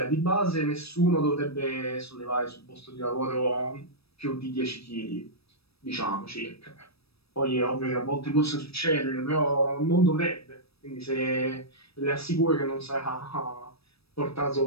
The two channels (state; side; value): late; right; 0.78 ms